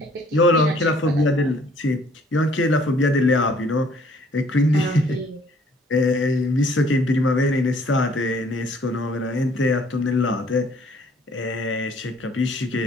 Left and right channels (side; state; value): both; normal; correlation 0.59